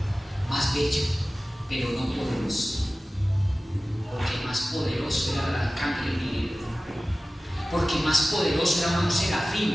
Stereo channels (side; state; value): both; normal; correlation 0.96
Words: más bello, pero no poderoso, porque más poderoso era el arcángel Miguel, porque más poderoso era un